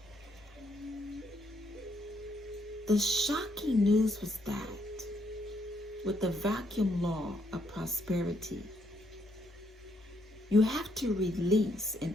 The shocking news was that with the vacuum law of prosperity, you have to release in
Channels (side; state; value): both; normal; correlation 0.73